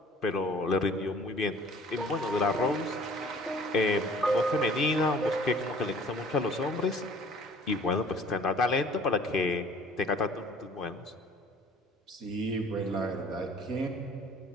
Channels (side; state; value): both; normal; correlation 0.52